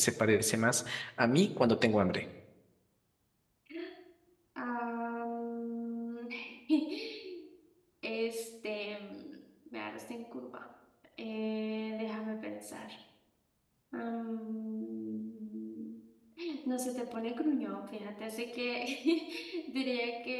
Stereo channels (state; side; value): identical; both; correlation 1.00